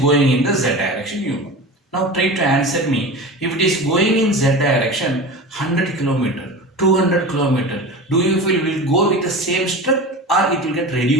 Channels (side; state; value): both; normal; correlation 0.31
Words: in the z direction, you know. Now try to answer me. If it is going in z direction 100 km, 200 km, do you feel will go with the same strength or it will get